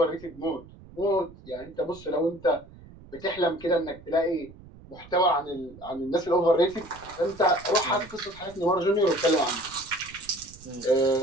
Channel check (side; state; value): right; noise; rumble, 20 dB below the sound